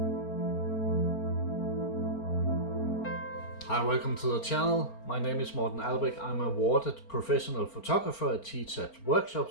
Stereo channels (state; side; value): late; right; 4.4 ms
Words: Hi, welcome to the channel. My name is Albek. I'm an awarded professional photographer. I teach at